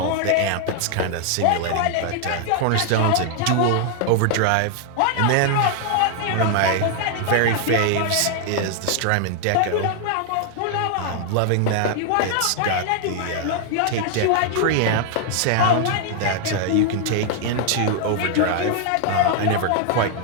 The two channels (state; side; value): different; both; correlation 0.00